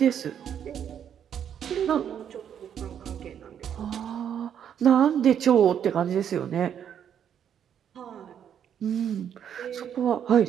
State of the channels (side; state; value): left; quieter; 8.9 dB